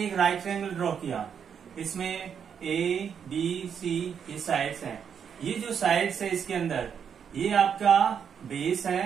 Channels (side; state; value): left; quieter; 7.5 dB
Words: एक राइट ट्रायंगल ड्रॉ किया, इसमें ए बी सी ये साइड्स हैं। ये जो साइड्स है इसके अंदर ये आपका बेस